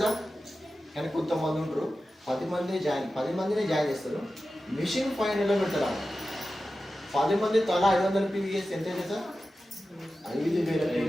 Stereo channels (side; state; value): both; normal; correlation 0.93